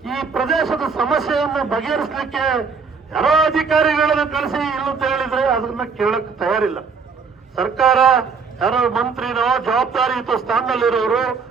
ಈ ಪ್ರದೇಶದ ಸಮಸ್ಯೆಯನ್ನು ಬಗೆಹರಿಸಲಿಕ್ಕೆ ಯಾರೋ ಅಧಿಕಾರಿಗಳನ್ನು ಕಳಿಸಿ ಇಲ್ಲಂತ ಹೇಳಿದ್ರೆ ಅದನ್ನ ಕೇಳಕ್ ತಯಾರಿಲ್ಲ. ಸರ್ಕಾರ ಯಾರೋ ಮಂತ್ರಿನೋ ಜವಾಬ್ದಾರಿಯುತ ಸ್ಥಾನದಲ್ಲಿರೋರು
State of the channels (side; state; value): left; quieter; 5.3 dB